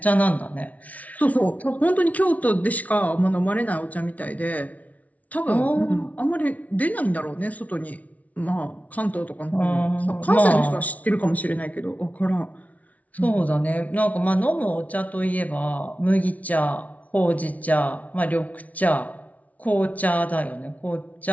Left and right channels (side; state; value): right; late; 0.070 ms